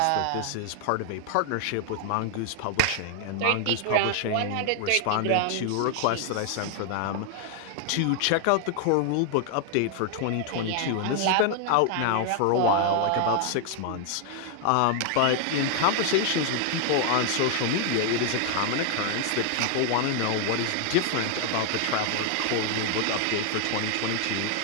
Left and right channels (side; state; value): both; different; correlation 0.00